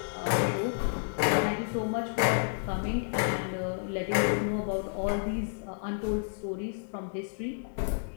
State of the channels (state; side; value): silent; right; digital silence